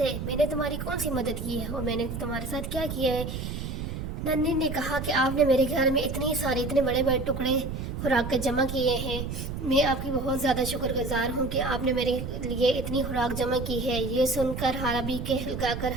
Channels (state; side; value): noise; right; rumble, 5 dB below the sound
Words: میں نے تمہاری کون سی مدد کی ہے اور میں نے تمہارے ساتھ کیا کیا ہے؟ ننھی نے کہا کہ آپ نے میرے گھر میں اتنے بڑے بڑے ٹکڑے خوراک کے جمع کیے ہیں، میں آپ کی بہت زیادہ شکر گزار ہوں کہ آپ نے میرے لیے اتنی خوراک جمع کی ہے۔ یہ سن کر حالہ بھی کہلگا کر